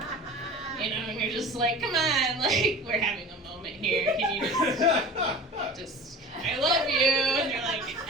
just like, come on, like, we're having a moment here. Can you just, I love you. And they're like,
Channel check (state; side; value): normal; both; correlation 0.38